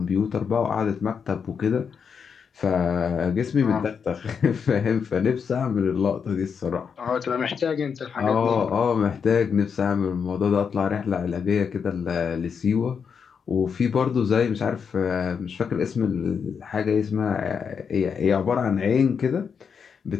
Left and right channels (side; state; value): right; quieter; 6.5 dB